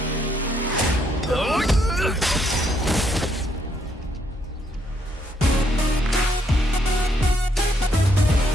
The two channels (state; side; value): normal; both; correlation 0.72